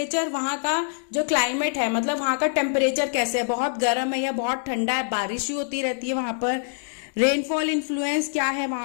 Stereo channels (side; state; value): right; silent; digital silence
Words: वहां का जो क्लाइमेट है मतलब वहां का टेम्परेचर कैसे है, बहुत गर्म है या बहुत ठंडा है, बारिश ही होती रहती है वहां पर। रेनफॉल इन्फ्लुएंस क्या है